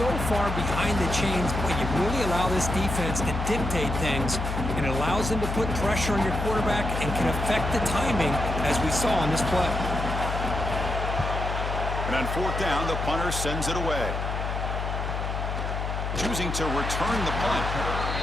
far behind the chains, boy, you really allow this defense to dictate things, and it allows them to put pressure on your quarterback and can affect the timing, as we saw on this play. And on fourth down, the punter sends it away. Choosing to return the punt.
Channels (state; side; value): noise; left; hum, 3 dB below the sound